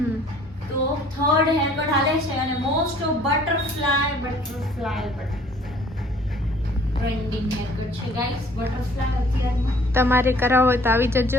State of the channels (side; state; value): both; normal; correlation 0.56